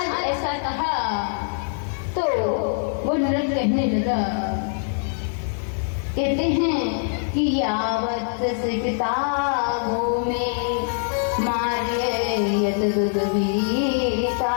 ऐसा कहा तो वो नृग कहने लगा, कहते हैं कि यावत सिकतागो में मार्य यतदुदवीतारिक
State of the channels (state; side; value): silent; right; digital silence